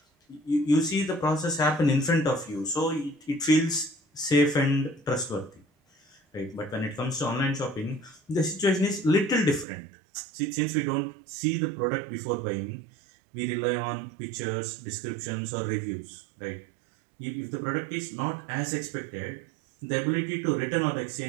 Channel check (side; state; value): left; drops out; at 9.7 s